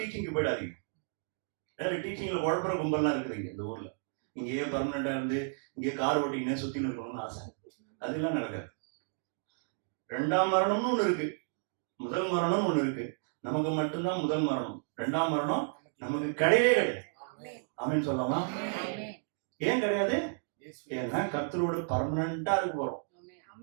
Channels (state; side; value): silent; left; digital silence